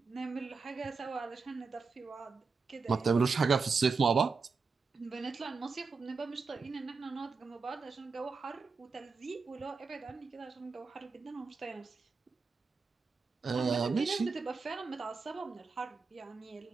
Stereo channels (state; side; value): quieter; left; 4.7 dB